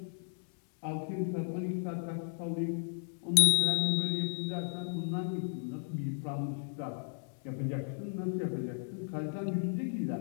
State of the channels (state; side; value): silent; right; digital silence